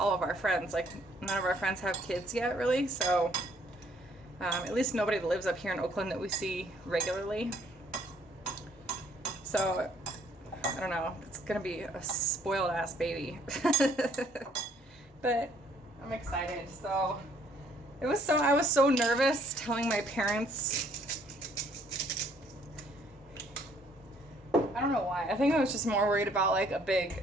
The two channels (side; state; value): both; normal; correlation 0.64